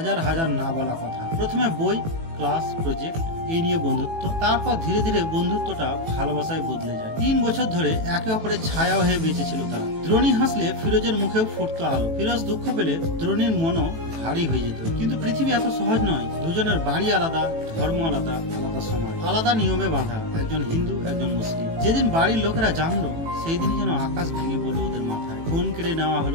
হাজার না বলা কথা। প্রথমে বই, ক্লাস, প্রজেক্ট, এই নিয়ে বন্ধুত্ব, তারপর ধীরে ধীরে বন্ধুত্বটা ভালোবাসায় বদলে যায়। 3 বছর ধরে একে অপরের ছায়া হয়ে বেঁচেছিল তারা। দ্রোণী হাসলে ফিরোজের মুখেও ফুটতো আলো, ফিরোজ দুঃখ পেলে দ্রোণীর মনও ভারী হয়ে যেত। কিন্তু পৃথিবী এত সহজ নয়। দুজনের বাড়ি আলাদা, ধর্ম আলাদা, আলাদা সমাজ, আলাদা নিয়মে বাঁধা, একজন হিন্দু একজন মুসলিম। যেদিন বাড়ির লোকেরা জানলো সেই দিনই যেন আকাশ ভেঙে পড়লো ওদের মাথায়। ফোন কেড়ে নেওয়া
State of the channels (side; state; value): left; late; 18 ms